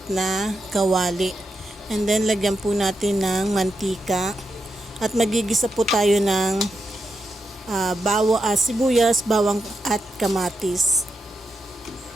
na kawali. And then lagyan po natin ng mantika. At magigisa po tayo ng sibuyas, bawang at kamatis.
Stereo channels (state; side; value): normal; both; correlation 0.86